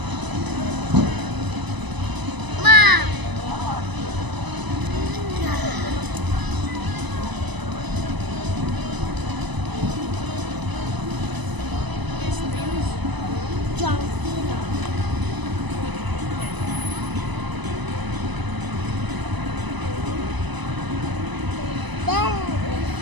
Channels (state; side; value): late; left; 1.0 ms